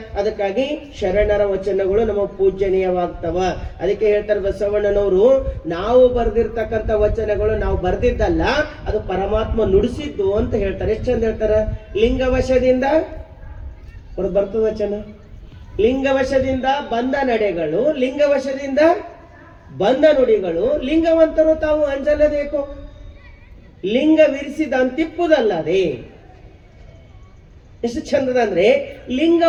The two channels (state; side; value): identical; both; correlation 1.00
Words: ಅದಕ್ಕಾಗಿ ಶರಣರ ವಚನಗಳು ನಮ್ಮ ಪೂಜನೀಯವಾಗ್ತವ. ಅದಕ್ಕೆ ಹೇಳ್ತಾರೆ ಬಸವಣ್ಣನವರು, ನಾವು ಬರೆದಿರ್ತಕ್ಕಂಥ ವಚನಗಳು ನಾವು ಬರ್ದಿದ್ದಲ್ಲ, ಅದು ಪರಮಾತ್ಮ ನುಡಿಸಿದ್ದು ಅಂತ ಹೇಳ್ತಾರೆ. ಎಷ್ಟು ಚಂದ ಹೇಳ್ತಾರ. ಲಿಂಗವಶದಿಂದ ಬರ್ತದ ವಚನ. ಲಿಂಗವಶದಿಂದ ಬಂದ ನಡೆಗಳು, ಲಿಂಗವಶದಿಂದ ಬಂದ ನುಡಿಗಳು. ಲಿಂಗವಂತರು ತಾವು ಅಂಜಲಬೇಕು, ಲಿಂಗವಿರಿಸಿದ ಅಂತಿಪ್ಪುದಲ್ಲದೆ. ಎಷ್ಟು ಚಂದದ ಅಂದ್ರೆ